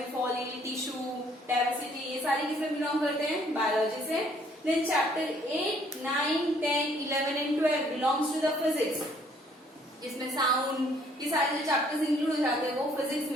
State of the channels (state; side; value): normal; both; correlation 0.63